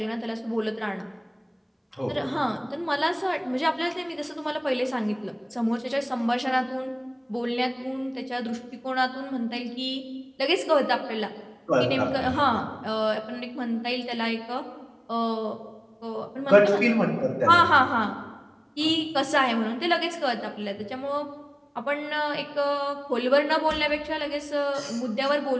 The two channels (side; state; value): both; identical; correlation 1.00